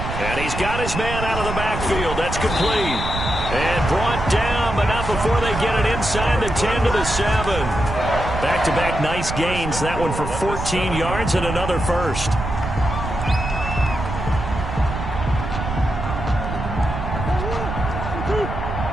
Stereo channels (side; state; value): right; noise; rumble, 6 dB below the sound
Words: And he's got his man out of the backfield. That's complete. And brought down, but not before they get it inside the 10 to the 7. Back-to-back nice gains. That one for 14 yards and another 1st.